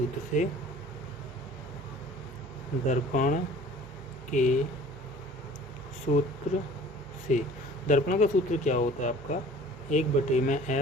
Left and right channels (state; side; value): normal; both; correlation 0.47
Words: से। दर्पण का सूत्र क्या होता है आपका,